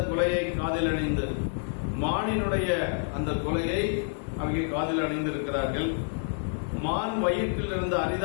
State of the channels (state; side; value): silent; right; 59 dB below the other